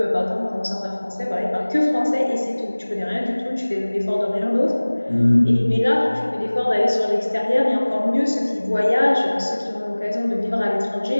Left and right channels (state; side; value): inverted; both; correlation -1.00